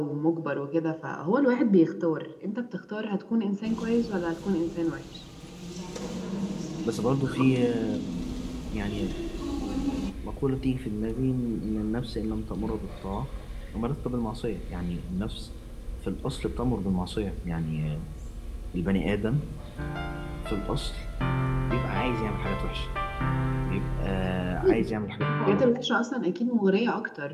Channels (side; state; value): both; identical; correlation 1.00